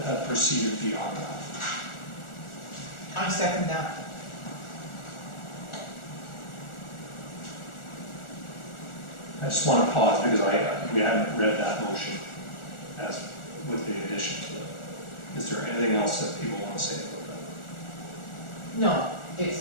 had proceeded beyond that. I second that. I just want to pause because we hadn't read that motion as with the addition to it. Is there anything else that people want to say about that? No,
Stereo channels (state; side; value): late; right; 1.4 ms